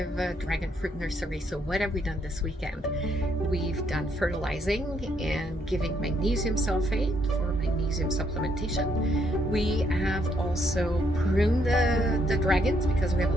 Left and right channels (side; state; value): both; normal; correlation 0.72